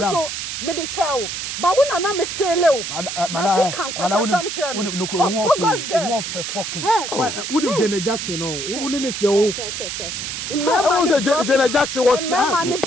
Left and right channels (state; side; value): noise; right; hiss, 5 dB below the sound